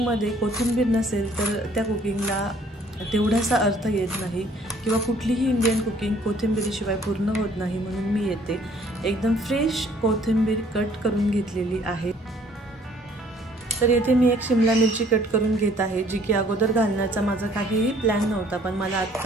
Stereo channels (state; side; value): normal; both; correlation 0.59